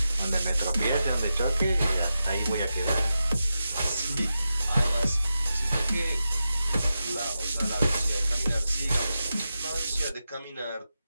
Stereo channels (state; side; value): inverted; both; correlation -0.90